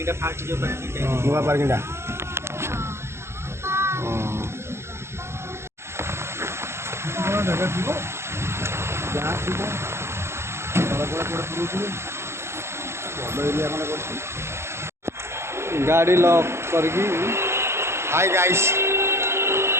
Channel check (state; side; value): late; left; 0.13 ms